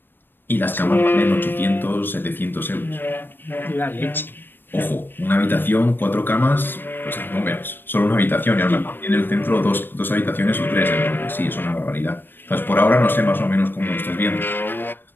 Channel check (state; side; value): late; right; 0.096 ms